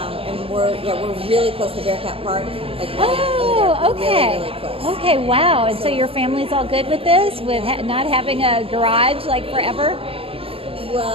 we're really close to Bearcat Park. Okay. Really close. Okay. Wow. And so your family's all good with this, with not having a garage like forever?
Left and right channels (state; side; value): late; left; 0.27 ms